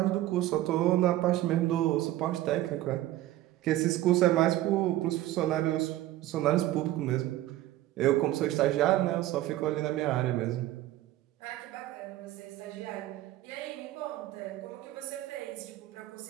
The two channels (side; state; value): left; quieter; 15.1 dB